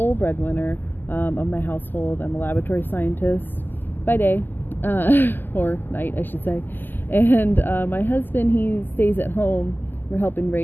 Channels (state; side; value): late; right; 0.091 ms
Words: breadwinner of my household. I'm a laboratory scientist by day, or night, I should say. And my husband, he stays at home. We're helping